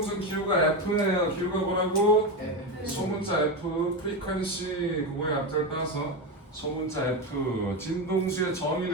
Q가 F예요. Q가 뭐라고? 소문자 F, 프리퀀시 그거의 앞자를 따서 소문자 F. 진동수의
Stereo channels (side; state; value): both; normal; correlation 0.14